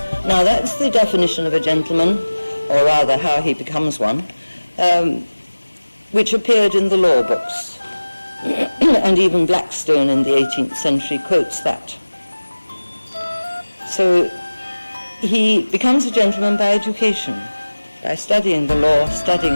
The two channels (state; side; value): inverted; both; correlation -1.00